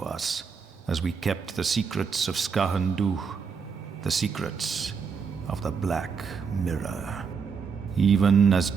as we kept the secrets of Skahandu, the secrets of the Black Mirror. Even as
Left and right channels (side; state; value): left; quieter; 5.9 dB